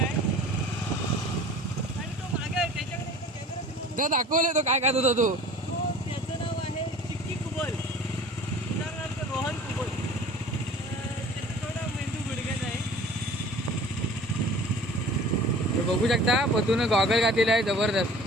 तो दाखवले तो काय खात होता तो. त्याचं नाव आहे चिक्की कुबल, उदाहरणार्थ रोहन कुबल. त्याचा थोडा मेंदू गुडघ्यात आहे. हे बघू शकता पतून गॉगल घातलेला आहे जबरदस्त.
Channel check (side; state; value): both; normal; correlation 0.44